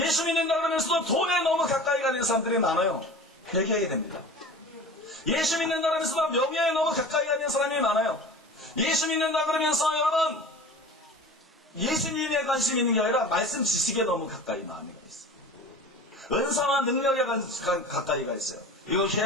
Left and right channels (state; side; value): normal; both; correlation 0.38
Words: 믿는다 그러면서도 돈에 너무 가까이 가는 사람들이 많아요. 회개해야 됩니다. 예수 믿는다 그러면서도 명예에 너무 가까이 가는 사람이 많아요. 예수 믿는다 그러면서 여러분 예수님에 관심이 있는 게 아니라 말씀 지식에 너무 가까이 마음이 가 있어요. 은사와 능력에 가까이 가 있어요. 이거